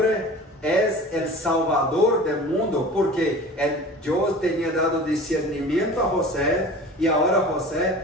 é o Salvador do mundo, porque Deus tinha dado discernimento a José, e agora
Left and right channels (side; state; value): both; normal; correlation 0.39